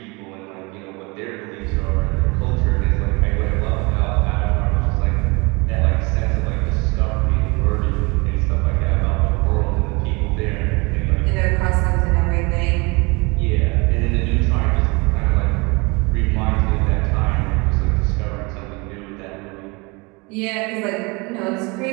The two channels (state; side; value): quieter; left; 27.5 dB